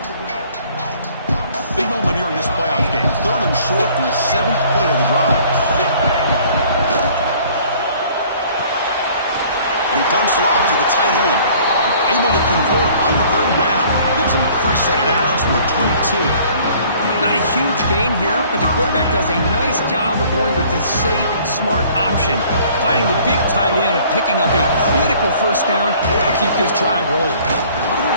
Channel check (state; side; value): inverted; both; correlation -0.55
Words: Big moment here in this playoff game. Third and short in the 7th play of the drive. And he dumps it off to the tight end. Able to convert on third down. Gives him a fresh set of downs from the 22. Not a huge gain here, but the quarterback does a nice job of going with the safe, smart option, finding the big tight end and picking up a critical first down to keep this drive rolling.